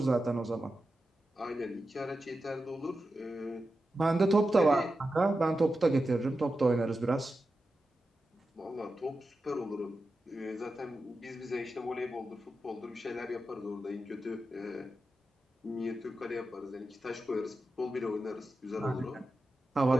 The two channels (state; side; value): normal; both; correlation 0.90